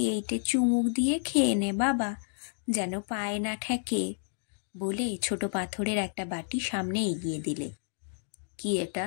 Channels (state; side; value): silent; right; digital silence